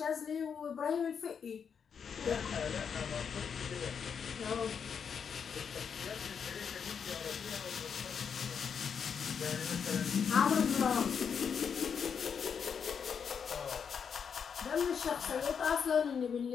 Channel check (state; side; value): quieter; right; 6.8 dB